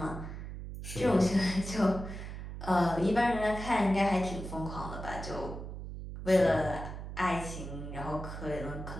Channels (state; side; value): noise; right; hum, 8 dB below the sound